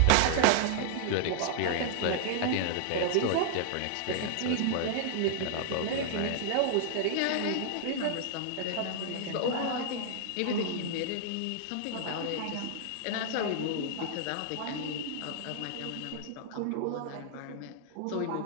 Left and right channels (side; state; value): both; different; correlation -0.01